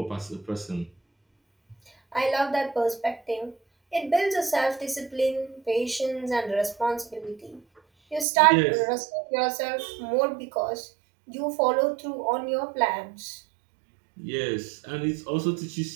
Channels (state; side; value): drops out; left; at 8.2 s